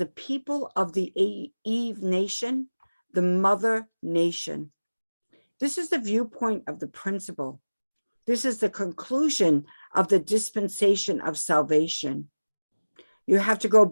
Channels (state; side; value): inverted; both; correlation -1.00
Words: people of the Eve nation, the mother nation. This is the viewpoint of the principle. This is the conclusion of the dispensation of salvation. You have to go